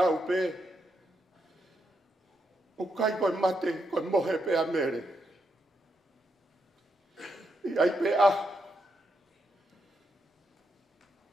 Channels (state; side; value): normal; both; correlation 0.81